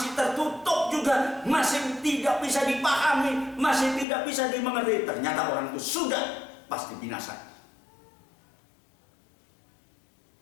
tertutup juga, masih tidak bisa dipahami, masih tidak bisa dimengerti, ternyata orang itu sudah pasti binasa.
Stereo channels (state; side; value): drops out; right; at 4.0 s